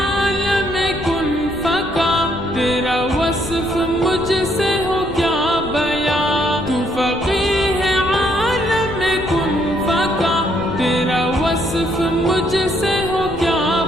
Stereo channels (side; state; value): left; noise; rumble, 13 dB below the sound